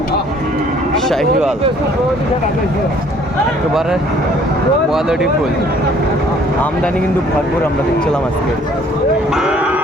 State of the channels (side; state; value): both; normal; correlation 0.58